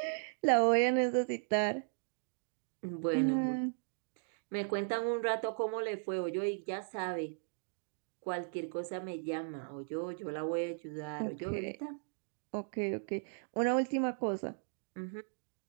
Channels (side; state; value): left; silent; digital silence